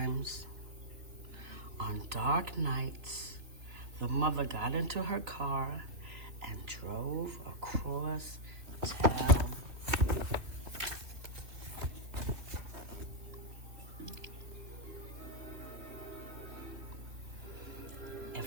on dark nights, the mother got into her car and drove across town. If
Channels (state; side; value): late; left; 3.3 ms